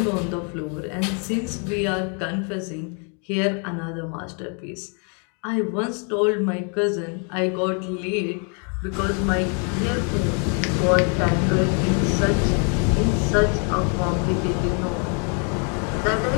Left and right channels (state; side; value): quieter; right; 39.3 dB